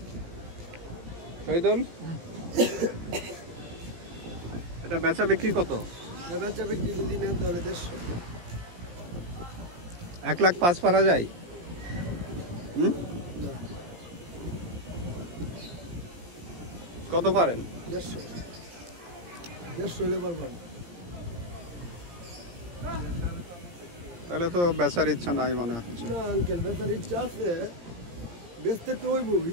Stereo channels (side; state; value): left; late; 17 ms